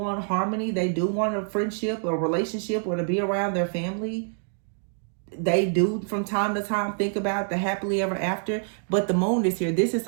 harmony. They do want a friendship or relationship or to be around their family. They do from time to time think about the happily ever after, but the Moon is here. This is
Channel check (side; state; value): left; silent; 58 dB below the other